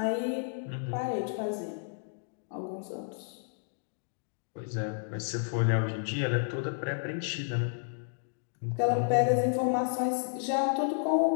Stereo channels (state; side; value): silent; right; digital silence